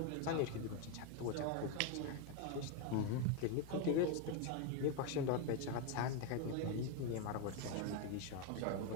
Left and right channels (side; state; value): both; different; correlation 0.02